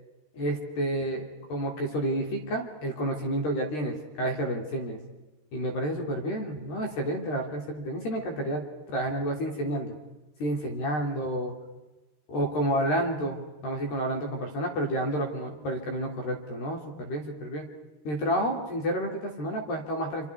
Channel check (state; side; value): late; right; 13 ms